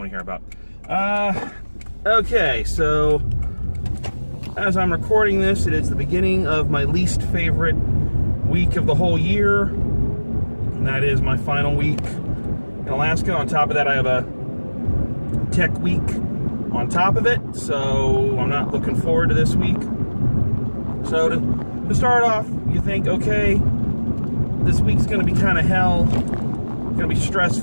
to hear about. Okay, so as I'm recording this, it is the beginning of my least favorite week of the whole year, and that is my final week in Alaska. On top of that, I have a tech week on top of it, so I'm not looking forward to this week. So to start off, you think, okay, this week's going to be kind of hell, going to be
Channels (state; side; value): inverted; both; correlation -1.00